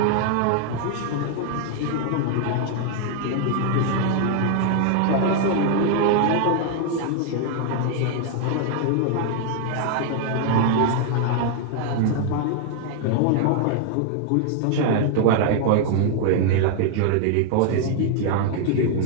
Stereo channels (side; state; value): both; different; correlation 0.00